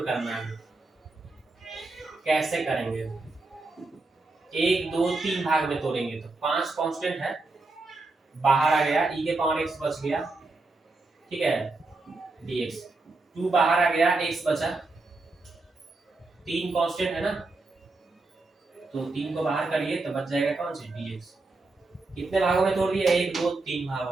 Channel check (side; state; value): left; quieter; 3.4 dB